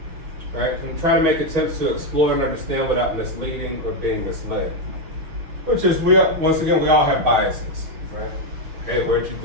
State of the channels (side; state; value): left; late; 6.1 ms